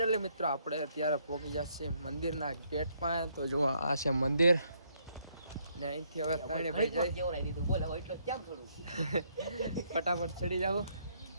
મિત્રો આપણે અત્યારે પહોંચી ગયા છીએ મંદિરના ગેટ પાસે. તો જો આ છે મંદિર ને અહીંથી હવે ત્રણે ભાઈ ફટાફટ ચડી જાવ.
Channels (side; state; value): both; inverted; correlation -0.71